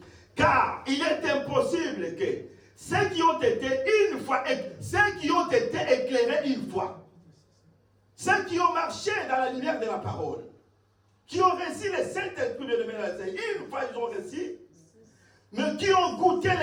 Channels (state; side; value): identical; both; correlation 1.00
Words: car il est impossible que ceux qui ont été éclairés une fois, ceux qui ont marché dans la lumière de la parole, qui ont reçu le Saint-Esprit de l'Éternel, une fois ils ont reçu, mais qui ont goûté